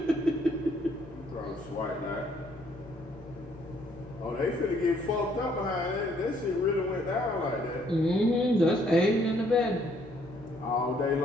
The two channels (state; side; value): normal; both; correlation 0.66